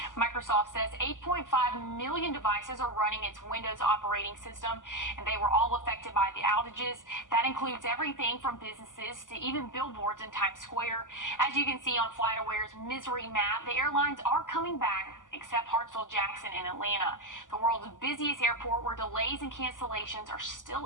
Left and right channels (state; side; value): late; right; 0.88 ms